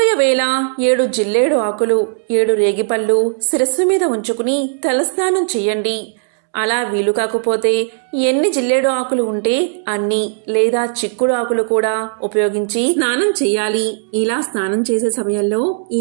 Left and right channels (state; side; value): silent; left; digital silence